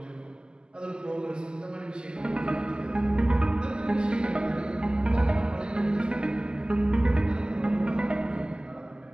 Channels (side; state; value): left; late; 0.047 ms